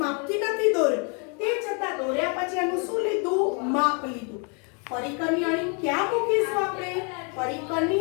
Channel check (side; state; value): right; quieter; 36.1 dB